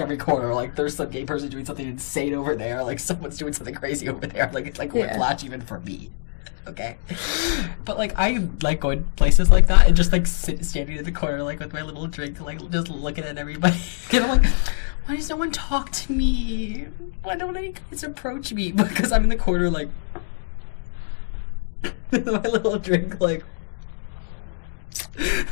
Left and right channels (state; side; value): silent; right; digital silence